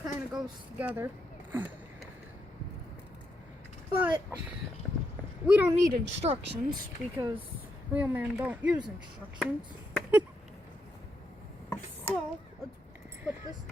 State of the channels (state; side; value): normal; both; correlation 0.81